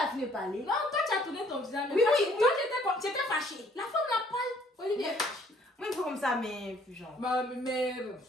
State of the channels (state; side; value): normal; both; correlation 0.62